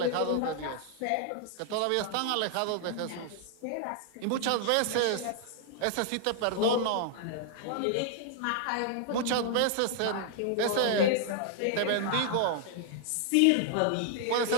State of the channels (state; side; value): different; both; correlation 0.00